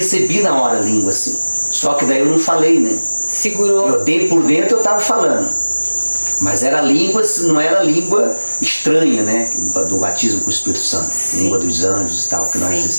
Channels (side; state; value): both; inverted; correlation -1.00